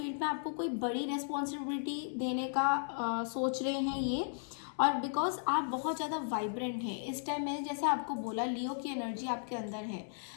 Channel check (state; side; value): silent; right; 54 dB below the other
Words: में आपको कोई बड़ी रिस्पॉन्सिबिलिटी देने का सोच रहे हैं ये। और बिकॉज आप बहुत ज़्यादा वाइब्रेंट हैं इस टाइम, मैंने जैसे आपको बोला लियो की एनर्जी आपके अंदर है,